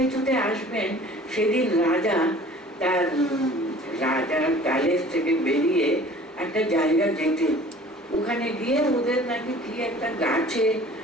ছুটে আসবেন। সেদিন রাজা তার রাজার প্যালেস থেকে বেরিয়ে একটা জায়গা যেতেন, ওখানে গিয়ে ওদের নাকি কি একটা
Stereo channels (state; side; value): normal; both; correlation 0.48